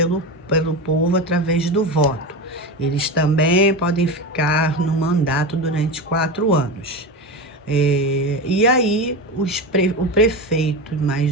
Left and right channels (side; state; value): both; normal; correlation 0.22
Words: povo através do voto. Eles também podem ficar no mandato durante 4 anos. E aí, o prefeito,